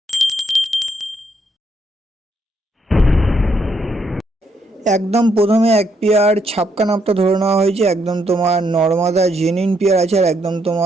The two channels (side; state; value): both; normal; correlation 0.74